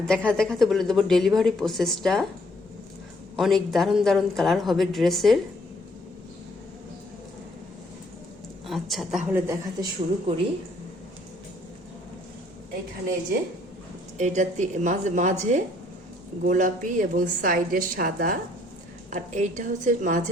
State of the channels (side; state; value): both; normal; correlation 0.64